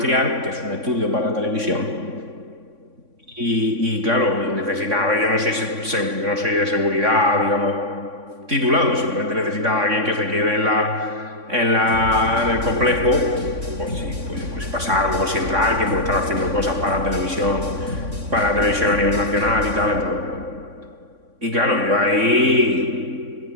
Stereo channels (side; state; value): left; late; 3.6 ms